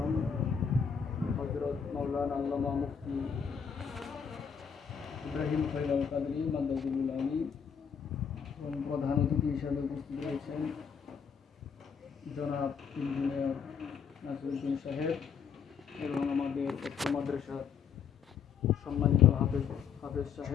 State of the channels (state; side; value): quieter; right; 6.9 dB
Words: হযরত মাওলানা আল্লামা মুফতি ইব্রাহিম খলিল কাদরী মাদাদুল আলী এবং প্রধান অতিথি হিসেবে উপস্থিত রয়েছেন জনাব ইঞ্জিনিয়ার নাসিরউদ্দিন সাহেব এবং আমাদের উচ্চ মাদ্রাসার সম্মানিত হাফেজ